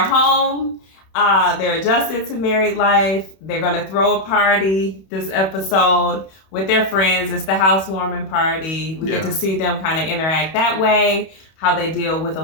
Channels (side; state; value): right; late; 31 ms